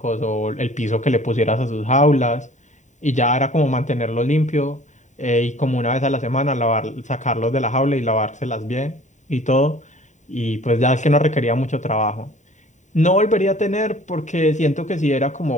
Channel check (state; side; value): late; right; 0.35 ms